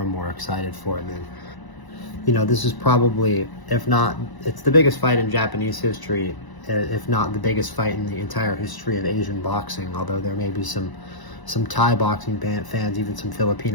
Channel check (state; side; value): late; right; 1.0 ms